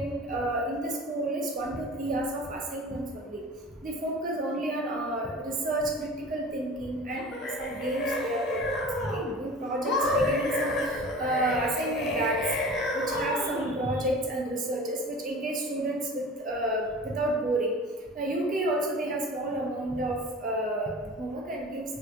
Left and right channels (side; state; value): both; normal; correlation 0.39